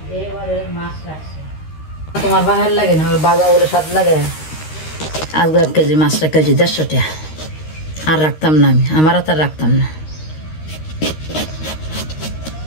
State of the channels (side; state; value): right; late; 13 ms